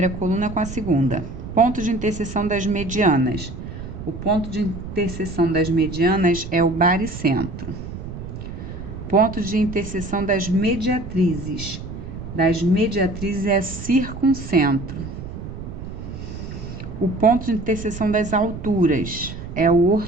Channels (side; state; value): right; noise; rumble, 9 dB below the sound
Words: coluna com a segunda. Ponto de interseção das medianas. O ponto de interseção das medianas é o baricentro. Ponto de interseção das mediatrizes. Das mediatrizes é circuncentro. O ponto de interseção das alturas é o